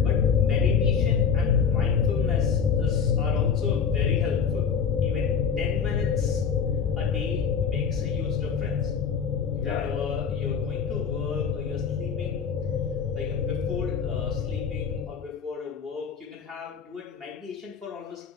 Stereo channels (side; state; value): right; quieter; 6.5 dB